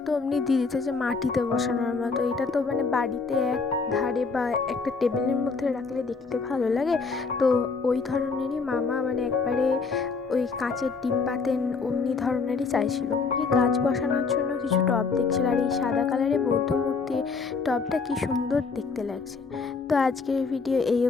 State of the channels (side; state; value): right; quieter; 4.6 dB